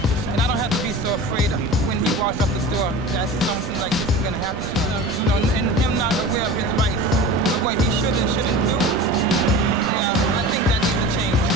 and I don't have to be so afraid when he walks up the door that something like this is going to happen to him. You know, and him not aware of his rights, of what he should and shouldn't do. Yeah, I think that needs to change.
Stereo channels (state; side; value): normal; both; correlation 0.35